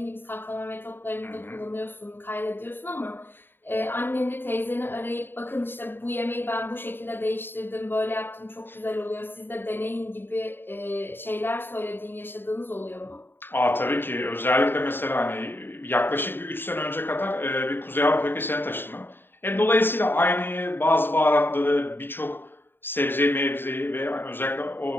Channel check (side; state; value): right; late; 0.099 ms